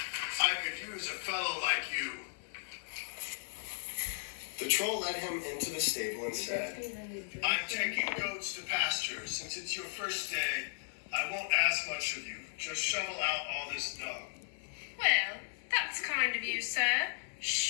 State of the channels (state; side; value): silent; right; 54 dB below the other